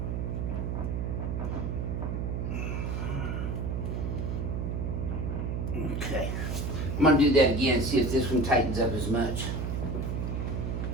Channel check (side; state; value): right; noise; hum, 1 dB below the sound